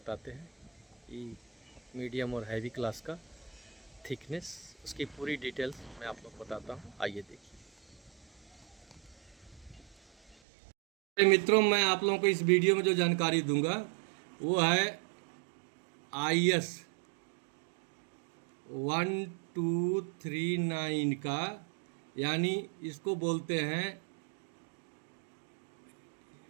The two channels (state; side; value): drops out; left; at 10.4 s